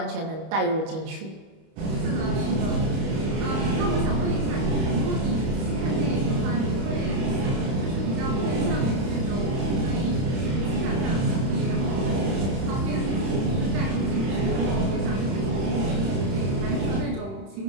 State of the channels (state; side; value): late; left; 31 ms